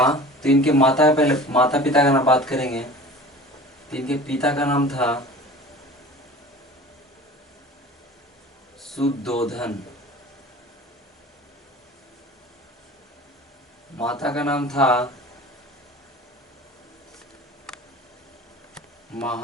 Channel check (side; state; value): both; normal; correlation 0.40